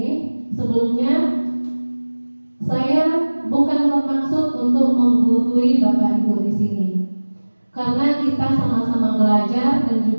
sebelumnya saya bukan bermaksud untuk menggurui Bapak Ibu di sini, karena kita sama-sama belajar dan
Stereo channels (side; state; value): both; inverted; correlation -1.00